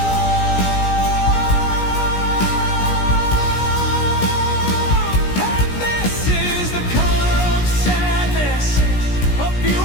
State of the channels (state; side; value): late; right; 17 ms